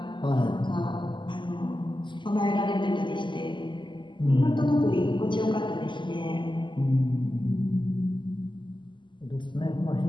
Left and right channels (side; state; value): right; late; 0.23 ms